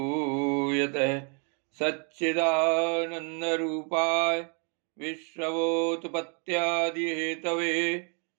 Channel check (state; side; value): quieter; left; 38.2 dB